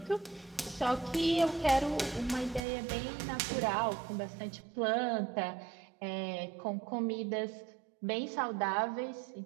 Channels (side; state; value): left; drops out; at 2.6 s